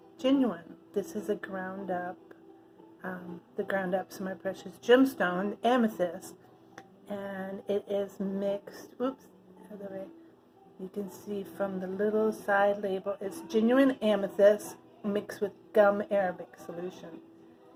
Genuine. This is a ground up, the ground up Semi Precious Gemstone Amethyst, and it is mixed. Oops, other way. You can see from the little side label, it's genuine amethyst mixed with gum Arabic solution,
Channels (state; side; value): identical; both; correlation 1.00